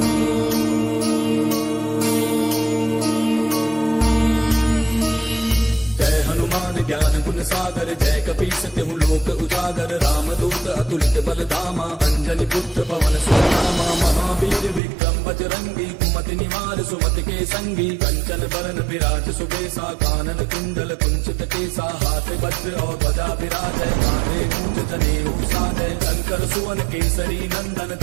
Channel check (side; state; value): left; drops out; at 14.8 s